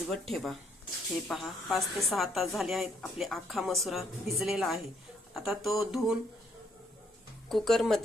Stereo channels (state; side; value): normal; both; correlation 0.70